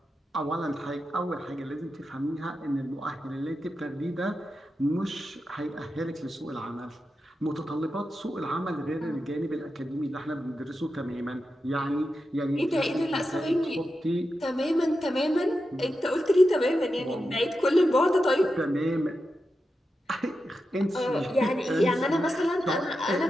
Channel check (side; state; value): both; normal; correlation 0.89